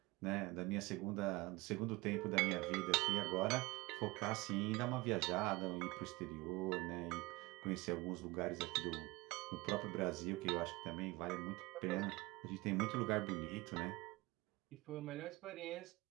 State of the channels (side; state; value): left; quieter; 22.3 dB